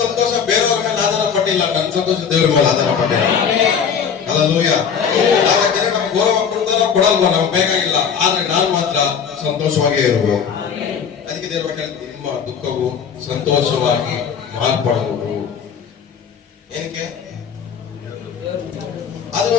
ಸಂತೋಷ ಬೇರೆಯವ್ರ ಮೇಲೆ ಆಧಾರ ಪಟ್ಟ ಪಟ್ಟಿಲ್ಲ, ನನ್ನ ಸಂತೋಷ ದೇವರ ಮೇಲೆ ಆಧಾರ ಪಟ್ಟಿಲ್ಲ. ಹಲ್ಲೆಲೂಯಾ. ಜನ ನಮ್ಗೆ ಗೌರವ ಕೊಡ್ತಾರೋ ಕೊಡಲ್ವೋ ನಮ್ಗೆ ಬೇಕಾಗಿಲ್ಲ, ಆದ್ರೆ ನಾನ್ ಮಾತ್ರ ಸಂತೋಷವಾಗೇ ಇರಬೇಕು. ಅದಕ್ಕೆ ದೇವರು ನಿಮ್ಮ ದುಃಖವು ಸಂತೋಷವಾಗಿ ಮಾರ್ಪಡುವುದು. ಏನಕ್ಕೆ? ಅದು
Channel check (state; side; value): quieter; right; 7.1 dB